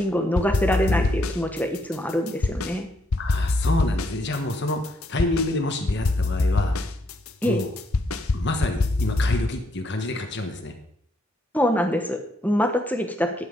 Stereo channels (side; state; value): both; normal; correlation 0.74